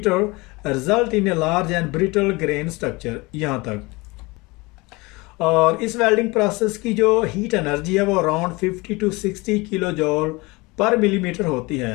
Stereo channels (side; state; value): right; quieter; 24.3 dB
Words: result in a large and brittle grain structure. यहाँ तक। और इस वेल्डिंग प्रोसेस की जो हीट एनर्जी है वो अराउंड 50 to 60 किलो जूल पर मिलीमीटर होती